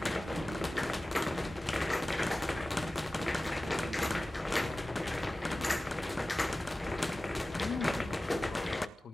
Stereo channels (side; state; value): both; normal; correlation 0.97